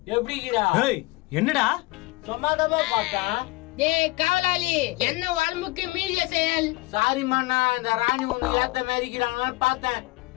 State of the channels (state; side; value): quieter; right; 22.0 dB